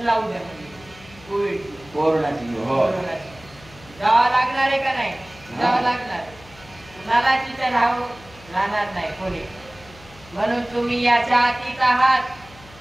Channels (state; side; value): noise; left; hum, 22 dB below the sound